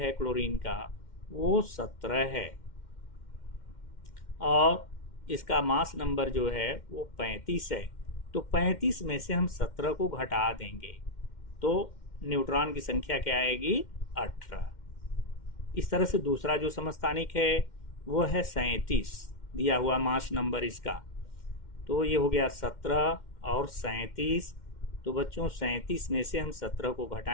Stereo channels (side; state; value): right; late; 2.1 ms